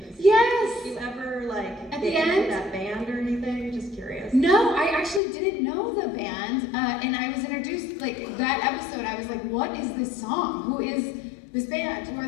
Yes. Do you ever like At get the into end? that band or anything? Just curious. No, I actually didn't know the band, and I was introduced, like, that episode, I was like, what is this song? Who is this band? Who are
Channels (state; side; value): drops out; right; at 5.2 s